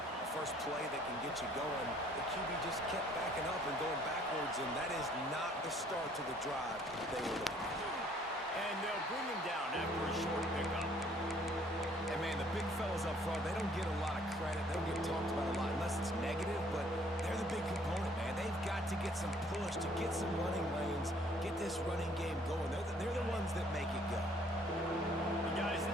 a first play that can get you going. The QB just kept backing up and going backwards, and that is not the start to the drive they were looking for. And they'll bring him down after a short pickup. And, man, the big fellas up front, they don't get a lot of credit. They don't get talked about a lot unless it's negative, but they're the big component, man. They've got to get some push, to get some running lanes, get this running game going. They're the ones that make it go. And guys,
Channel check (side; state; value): both; normal; correlation 0.60